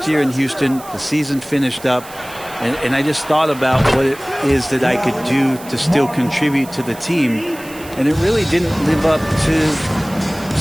year in Houston, the season finished up. And I just thought about what it is that I could do to still contribute to the team. And it really didn't live up to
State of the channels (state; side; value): noise; right; hiss, 18 dB below the sound